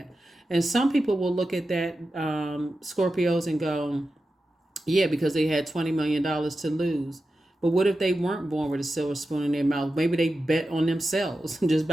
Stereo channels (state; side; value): normal; both; correlation 0.92